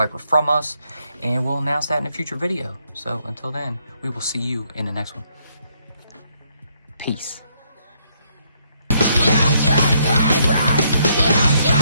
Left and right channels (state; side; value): inverted; both; correlation -0.72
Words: from us. And we'll announce that in a future video. So until then, we will see you in the next one. Peace.